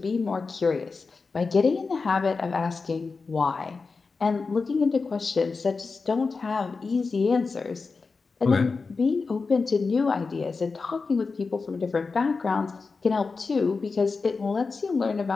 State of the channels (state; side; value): quieter; right; 4.4 dB